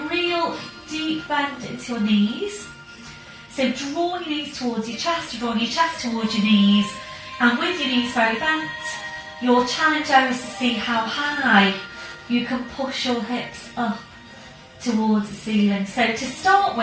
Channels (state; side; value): identical; both; correlation 1.00